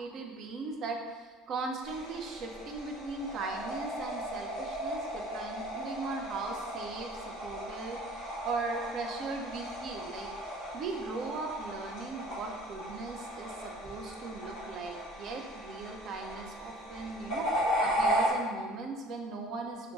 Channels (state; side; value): normal; both; correlation 0.49